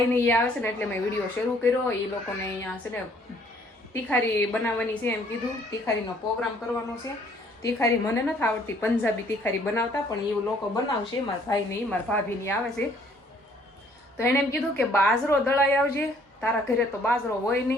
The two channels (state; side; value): normal; both; correlation 0.61